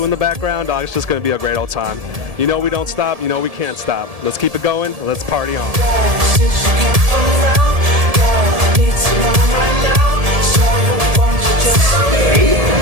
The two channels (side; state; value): left; late; 1.7 ms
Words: in the background. Dog, it's just going to be a great old time. You know we don't stop. You know we can't stop. Let's keep it going. Let's party on.